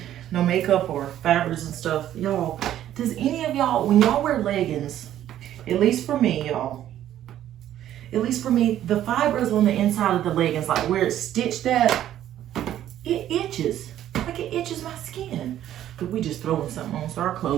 no makeup or fibers and stuff. Y'all, does any of y'all, when y'all wear leggings, at least for me, y'all, at least for me, the fibers on the inside of the leggings, like where it's stitched at, it itches. Like it itches my skin. But we just throwing something on so our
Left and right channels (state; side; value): quieter; left; 11.9 dB